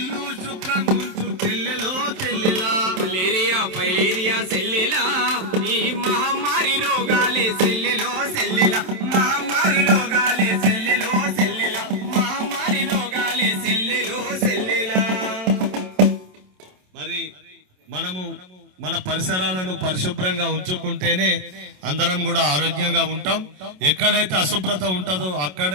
శుభ్రంగా ఉంచు చెల్లెలో చెల్లెలా మలేరియా ఫైలేరియా సెల్లెలా ఈ మహమ్మారి రోగాలే సెల్లెలో సెల్లెలా మహమ్మారి రోగాలే సెల్లెలో సెల్లెలా మహమ్మారి రోగాలే సెల్లెలో సెల్లెలా మరి మనము మన పరిసరాలను పరిశుభ్రంగా ఉంచుకుంటేనే అందరం కూడా ఆరోగ్యంగా ఉంటాం. ఎక్కడైతే అశుభ్రత ఉంటుందో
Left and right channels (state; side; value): late; left; 27 ms